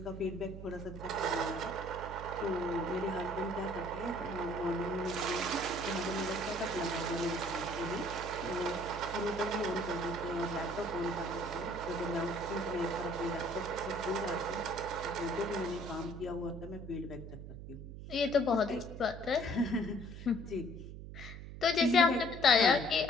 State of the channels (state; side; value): noise; right; hum, 11 dB below the sound